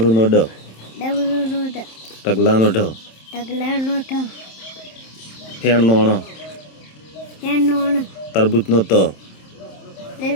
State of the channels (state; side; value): late; right; 27 ms